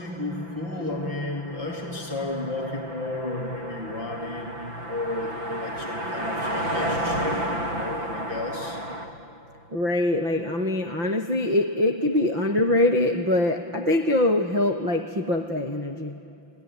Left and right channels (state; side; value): late; left; 5.9 ms